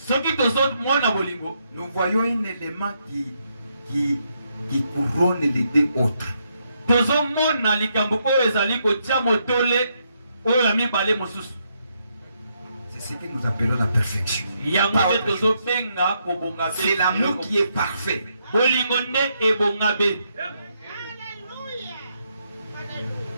nous voyons un élément qui couronne les deux autres. C'est ce que nous appelons la perfection. C'est l'amour qui est parfait.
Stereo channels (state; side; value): inverted; both; correlation -0.78